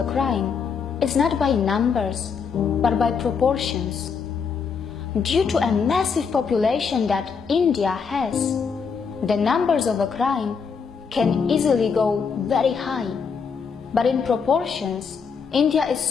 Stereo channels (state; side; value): quieter; right; 5.9 dB